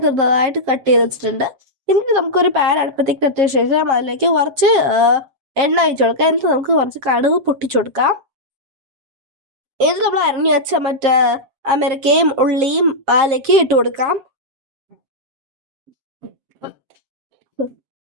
ചെറുതായിട്ട് കട്ട് ചെയ്ത് വെച്ചിട്ടുണ്ട്. എന്നിട്ട് നമുക്കൊരു പാൻ അടുപ്പത്തേക്ക് എത്തിയ ശേഷം അതിലേക്ക് കുറച്ച് എണ്ണ ഒഴിച്ചു കൊടുക്കാം. എന്നിട്ട് നമുക്ക് കുറച്ച് കടുക് പൊട്ടിച്ചു കൊടുക്കാം. എന്നിട്ട് നമ്മൾ അരിഞ്ഞു വെച്ച മറ്റേ അമേരിക്കയും ഉള്ളിയും അതിലേക്ക് ഇട്ട് കൊടുക്കാം.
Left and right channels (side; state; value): left; late; 7.6 ms